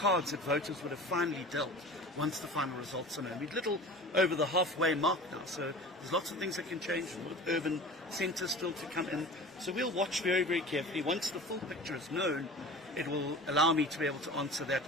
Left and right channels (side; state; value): both; normal; correlation 0.38